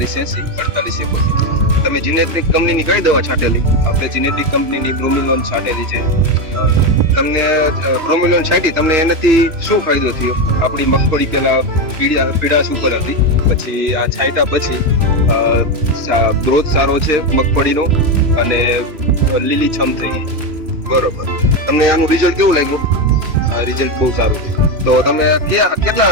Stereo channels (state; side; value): late; left; 3.0 ms